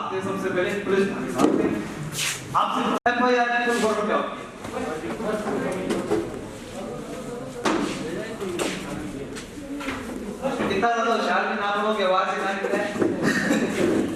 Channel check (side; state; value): both; identical; correlation 1.00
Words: हैं? सबसे पहले पुलिस भागते हैं। आपसे एफआईआर की तो गौरव क्या होती है? इतना ज्यादा होशियार भी ना लोगों की आवाज से ना निकले।